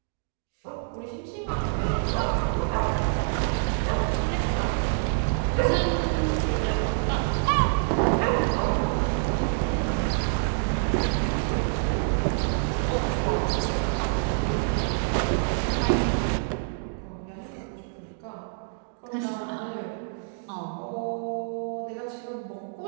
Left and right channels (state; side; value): silent; left; digital silence